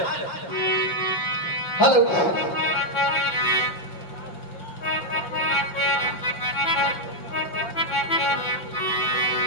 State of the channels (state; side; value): late; right; 5.8 ms